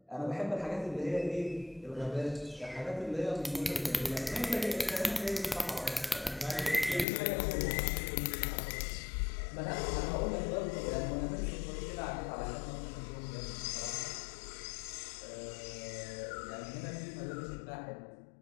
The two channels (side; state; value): right; drops out; at 7.1 s